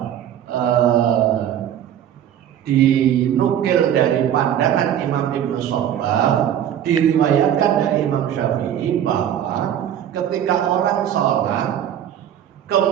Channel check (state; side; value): quieter; left; 10.3 dB